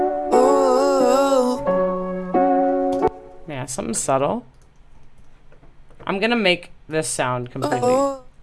Yeah, something subtle. I'm going to make this sound completely...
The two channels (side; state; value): both; identical; correlation 1.00